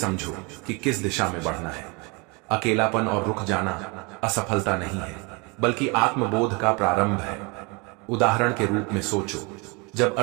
कि किस दिशा में बढ़ना है। अकेलापन और रुक जाना असफलता नहीं है, बल्कि आत्मबोध का प्रारंभ है। उदाहरण के रूप में सोचो, जब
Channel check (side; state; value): left; quieter; 29.6 dB